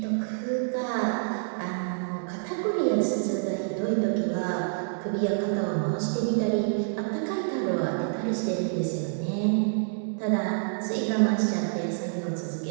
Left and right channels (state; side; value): silent; left; digital silence